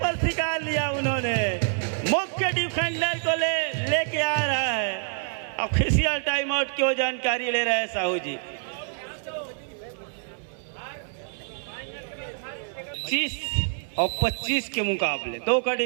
पर शिकार लिया उन्होंने, मुख्य डिफेंडर को लेके आ रहा है। ऑफिशियल टाइम आउट की जानकारी ले रहे हैं साहू जी। 25 और 25 के मुकाबले 2 का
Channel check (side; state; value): left; silent; 60 dB below the other